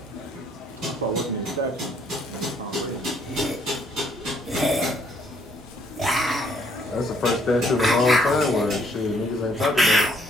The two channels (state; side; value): normal; both; correlation 0.66